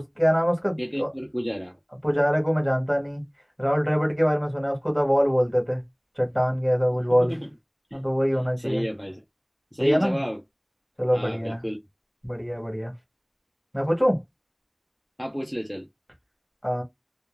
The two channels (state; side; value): identical; both; correlation 1.00